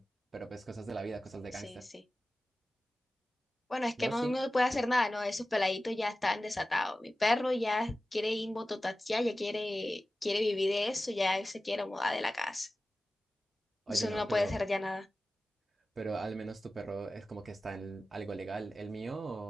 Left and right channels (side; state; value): both; normal; correlation 0.95